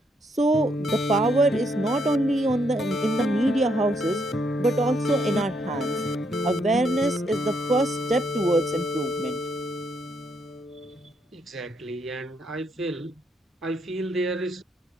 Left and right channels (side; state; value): both; normal; correlation 0.75